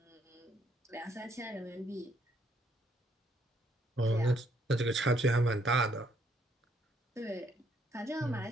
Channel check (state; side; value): normal; both; correlation 0.70